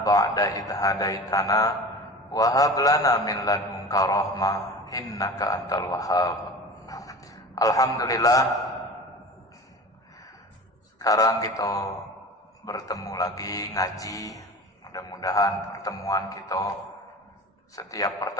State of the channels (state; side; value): normal; both; correlation 0.35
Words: ba'da idh hadaitana wa hab lana min ladunka rahmah innaka antal wahhab. Alhamdulillah, sekarang kita bertemu lagi ngaji. Mudah-mudahan pertemuan kita, setiap